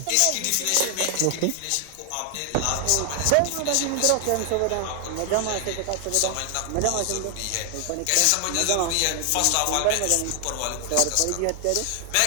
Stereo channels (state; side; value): different; both; correlation 0.00